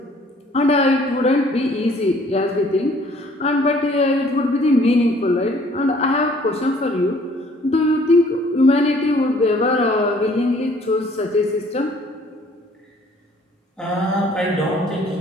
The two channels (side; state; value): both; normal; correlation 0.58